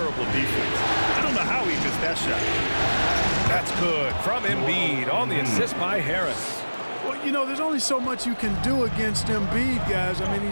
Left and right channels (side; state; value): both; inverted; correlation -1.00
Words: defense. I don't know how he missed that shot. That's good from Embiid on the assist by Harris. Well, you know, there's only so much you can do against Embiid, guys. I mean,